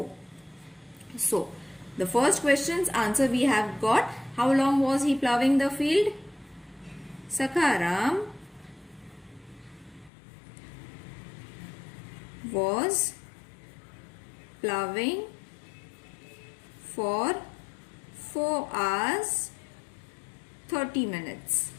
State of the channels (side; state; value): right; drops out; at 10.1 s